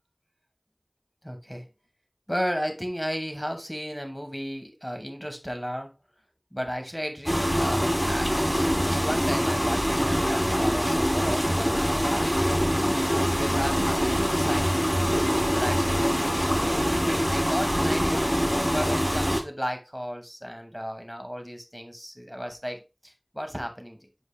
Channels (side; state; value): both; identical; correlation 1.00